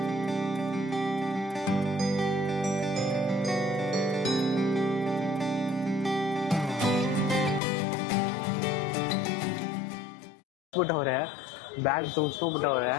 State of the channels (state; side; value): drops out; right; at 7.6 s